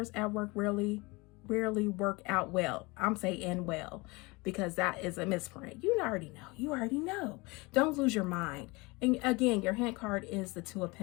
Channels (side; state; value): right; quieter; 25.1 dB